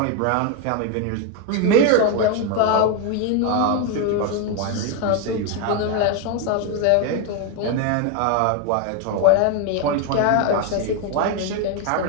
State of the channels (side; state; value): both; different; correlation 0.01